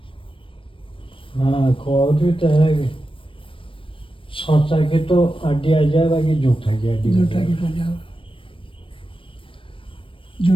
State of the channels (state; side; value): late; right; 0.25 ms